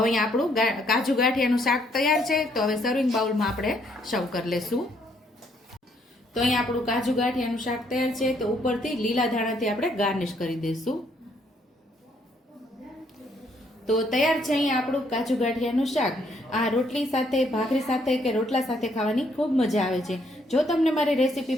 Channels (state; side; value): normal; both; correlation 0.69